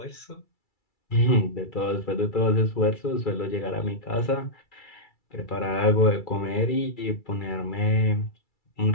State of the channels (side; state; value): right; late; 2.3 ms